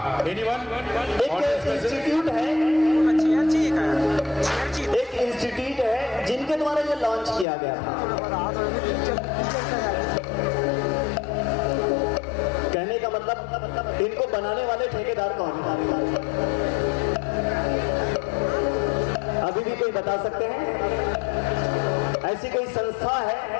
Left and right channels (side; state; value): right; drops out; at 7.5 s